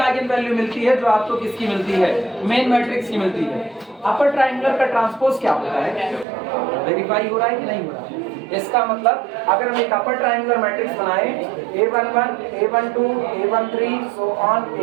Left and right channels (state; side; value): drops out; left; at 6.2 s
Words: वैल्यू मिलती है जो आपको किसकी मिलती है, मेन मैट्रिक्स की मिलती है। अपर ट्रायंगुलर का ट्रांसपोज क्या होता है, वेरीफाई हो रहा है कि नहीं हो रहा है? इसका मतलब अगर हम एक अपर ट्रायंगुलर मैट्रिक्स बनाएं A11, A12, A13 so on